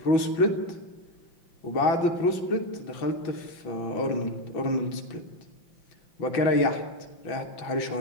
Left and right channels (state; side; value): late; right; 5.8 ms